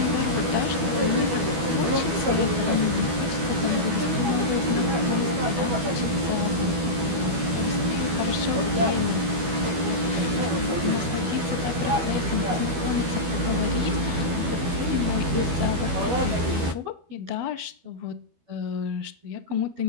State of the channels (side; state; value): left; late; 12 ms